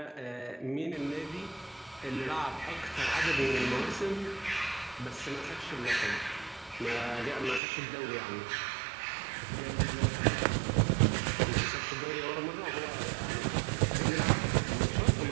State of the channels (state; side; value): drops out; left; at 7.6 s